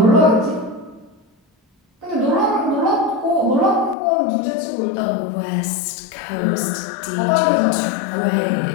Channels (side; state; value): right; drops out; at 4.0 s